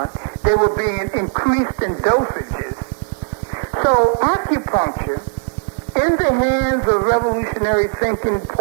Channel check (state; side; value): silent; left; 67 dB below the other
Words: they were being increased in dosages. So acupuncture, in the hands of revolutionary thinking